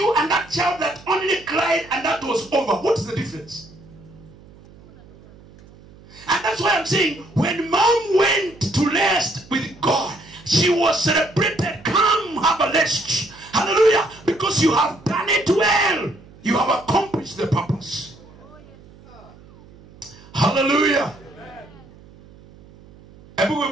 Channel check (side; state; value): right; noise; hum, 23 dB below the sound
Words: and that child that only cried and that was over. What is the difference? And that's why I'm saying, when mom went to rest with God, she was celebrated. Come, have a rest. Hallelujah. Because you have done it well. You have accomplished the purpose. Hallelujah. Hebu